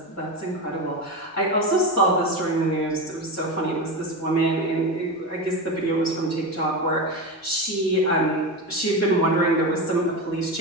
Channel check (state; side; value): normal; both; correlation 0.19